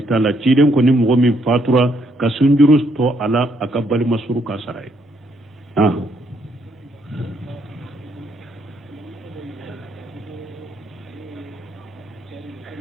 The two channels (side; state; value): both; normal; correlation 0.72